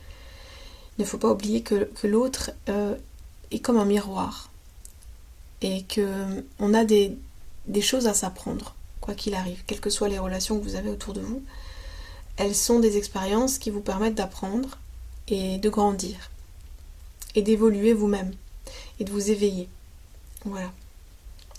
Il ne faut pas oublier que l'autre est comme un miroir et qu'on a des choses à s'apprendre, quoi qu'il arrive, quelles que soient les relations que vous avez autour de vous. Elles sont des expériences qui vous permettent d'apprendre et de grandir et d'évoluer vous-même et de vous éveiller. Voilà.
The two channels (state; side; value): identical; both; correlation 1.00